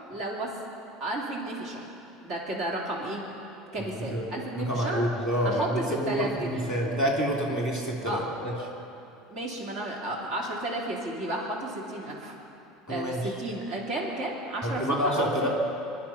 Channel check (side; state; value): both; normal; correlation 0.36